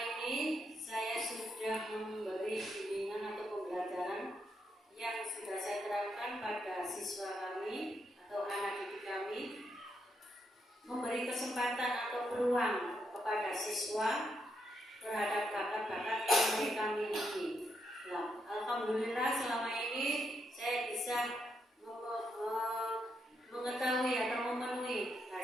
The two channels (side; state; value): both; normal; correlation 0.80